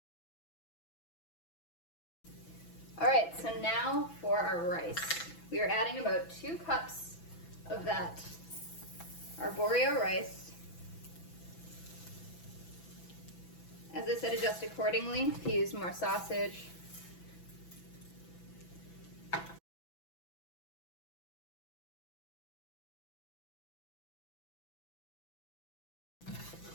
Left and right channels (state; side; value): late; right; 6.0 ms